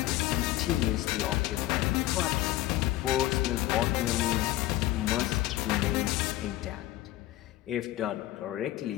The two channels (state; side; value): quieter; right; 15.6 dB